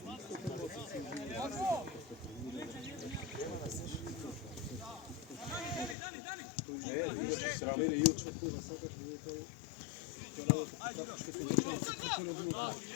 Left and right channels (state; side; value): drops out; right; at 6.0 s